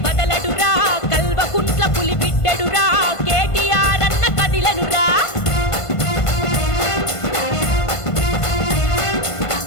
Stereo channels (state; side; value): late; right; 1.5 ms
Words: బదలడురా, కల్వకుంట్ల పులి బిడ్డడురా, కేటీఆర్ అన్న కదిలనురా.